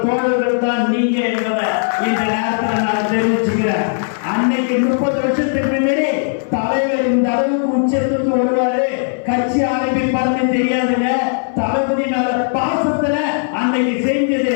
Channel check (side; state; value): right; silent; 60 dB below the other